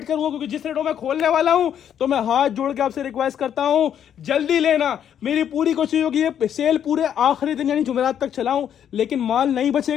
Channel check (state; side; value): quieter; right; 9.3 dB